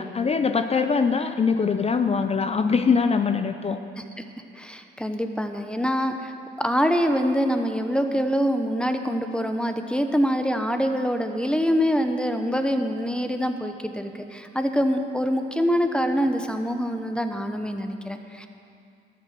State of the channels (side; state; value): both; normal; correlation 0.80